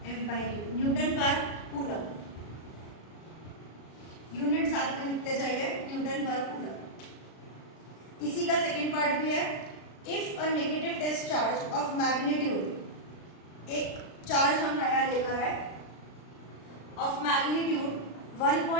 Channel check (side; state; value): right; late; 36 ms